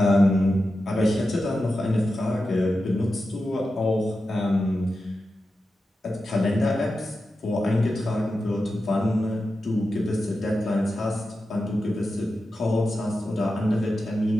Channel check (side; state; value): both; normal; correlation 0.91